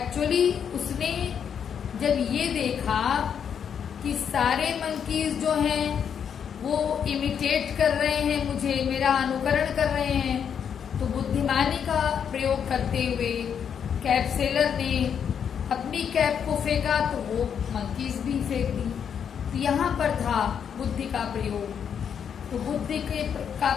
उसने जब ये देखा कि सारे मंकीज जो हैं वो इमिटेट कर रहे हैं मुझे, मेरा अनुकरण कर रहे हैं, तो बुद्धिमानी का प्रयोग करते हुए कैप सेलर ने अपनी कैप को फेंका तो वो मंकीज भी फेंक दी। तो यहाँ पर था बुद्धि का प्रयोग। तो बुद्धि का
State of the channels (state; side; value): quieter; right; 7.8 dB